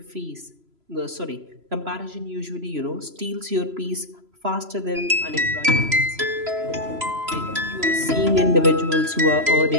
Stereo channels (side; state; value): left; late; 3.0 ms